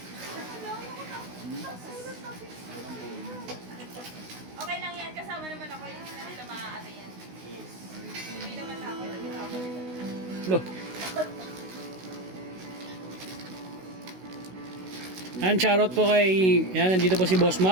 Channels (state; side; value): late; left; 16 ms